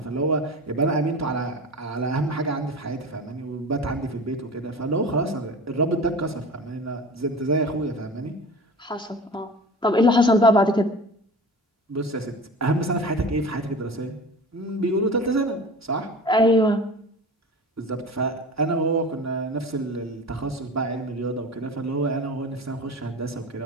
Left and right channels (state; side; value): normal; both; correlation 0.35